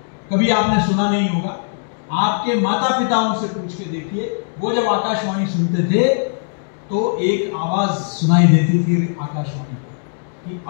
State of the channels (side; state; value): right; silent; digital silence